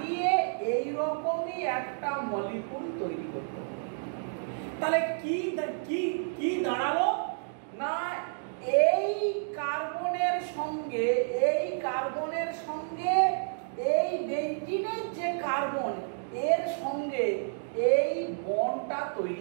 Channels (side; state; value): left; silent; digital silence